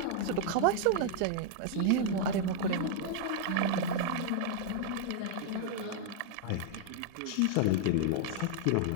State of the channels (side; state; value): both; different; correlation 0.00